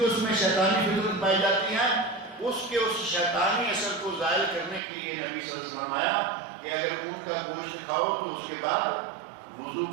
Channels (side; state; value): left; drops out; at 4.8 s